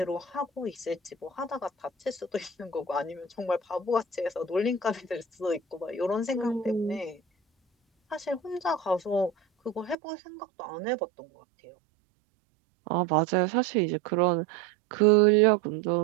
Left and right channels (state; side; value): drops out; left; at 10.0 s